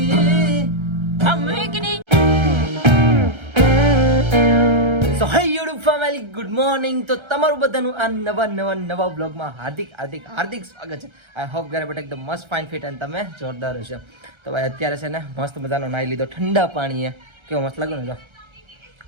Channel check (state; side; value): late; left; 1.3 ms